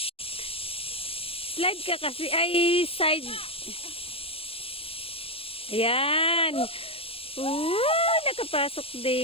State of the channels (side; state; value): right; late; 0.28 ms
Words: Slide ka kasi. Ay, side. Ayan. Nakapasok